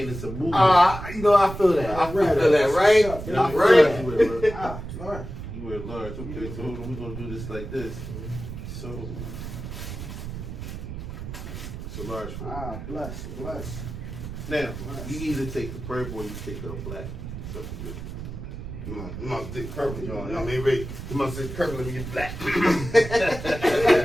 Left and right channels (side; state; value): right; noise; rumble, 9 dB below the sound